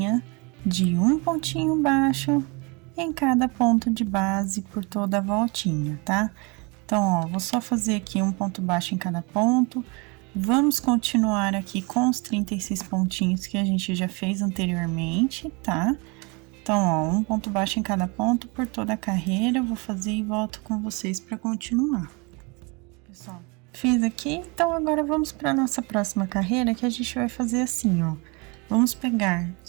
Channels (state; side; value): quieter; left; 29.5 dB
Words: de um pontinho baixo em cada ponto de base por toda a voltinha, tá? Então, ó, vou só fazer aqui um ponto baixo em cada ponto. Vamos continuar aqui com os 36 pontinhos que a gente já fez anteriormente, tá? Então, ó, um ponto baixo em cada ponto por toda a carreira. Eu vou fazer e volto com vocês para continuar. Pessoal, fiz aqui, então agora vamos para nossa próxima carreira, que a gente vai fazer assim, ó. Vamos pegar